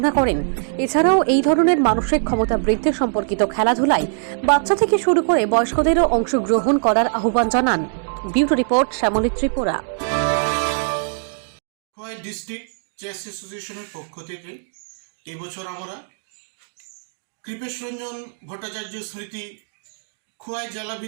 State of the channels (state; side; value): silent; left; digital silence